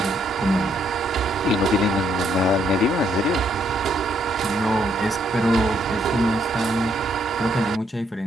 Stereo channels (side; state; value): both; normal; correlation 0.72